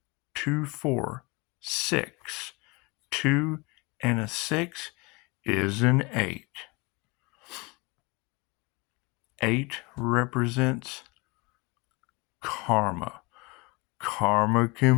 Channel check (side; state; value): right; quieter; 26.6 dB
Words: 2, 4, 6. 2 and a 6 is an 8. 8 represents karma. Karma